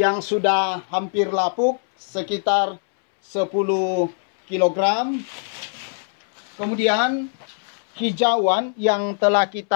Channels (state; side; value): silent; right; 64 dB below the other